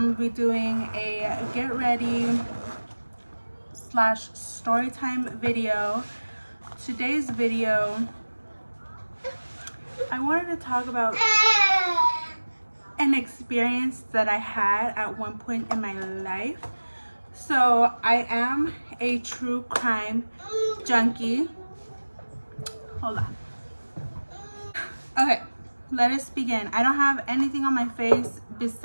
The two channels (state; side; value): inverted; both; correlation -1.00